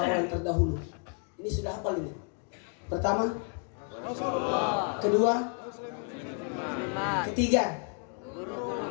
terdahulu. Ini sudah hafal ini. Pertama, kedua, ketiga,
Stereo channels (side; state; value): right; quieter; 39.1 dB